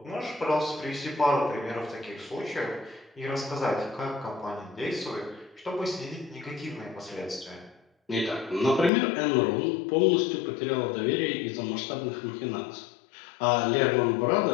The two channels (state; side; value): drops out; right; at 8.9 s